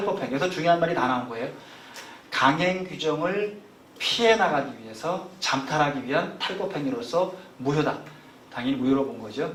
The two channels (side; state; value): both; identical; correlation 1.00